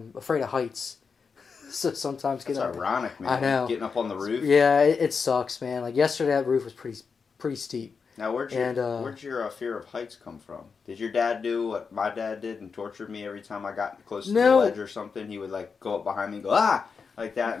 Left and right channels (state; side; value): quieter; right; 5.4 dB